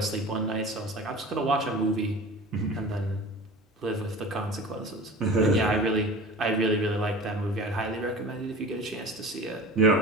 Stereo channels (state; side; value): normal; both; correlation 0.38